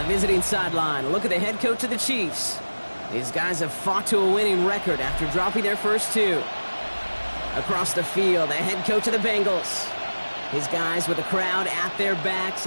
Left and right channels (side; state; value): both; inverted; correlation -1.00